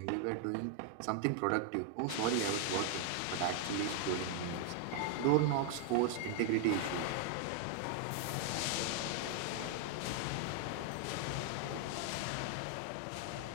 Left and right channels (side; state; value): both; different; correlation 0.00